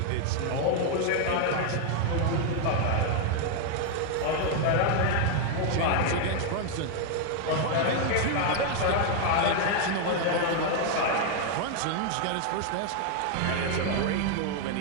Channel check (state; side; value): different; both; correlation 0.00